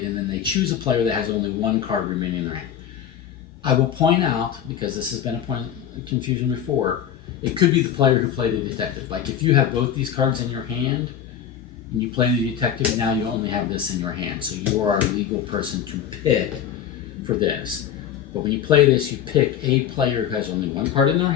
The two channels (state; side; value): quieter; right; 9.3 dB